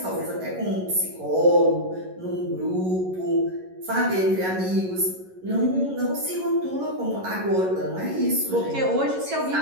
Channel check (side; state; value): left; late; 11 ms